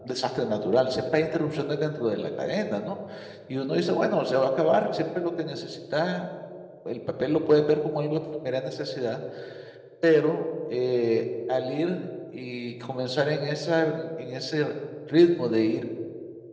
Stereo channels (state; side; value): identical; both; correlation 1.00